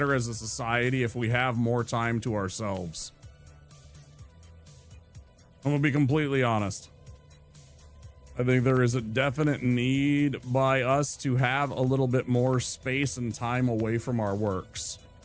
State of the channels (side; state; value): both; identical; correlation 1.00